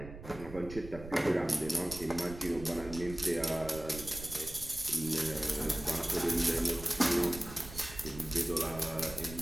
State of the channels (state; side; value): noise; right; rumble, 13 dB below the sound